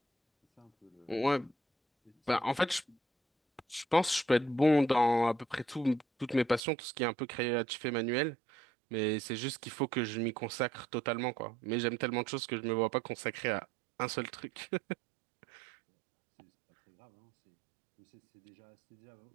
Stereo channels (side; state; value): left; drops out; at 6.6 s